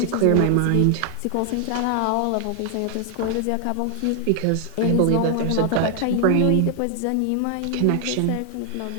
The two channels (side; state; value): both; different; correlation 0.00